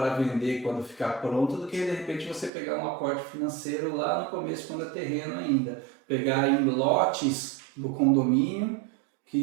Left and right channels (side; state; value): left; drops out; at 2.5 s